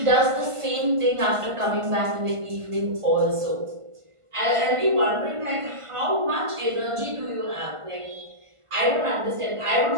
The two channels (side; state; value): left; late; 1.5 ms